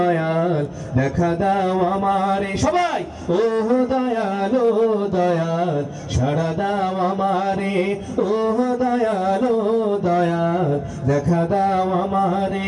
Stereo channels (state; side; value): identical; both; correlation 1.00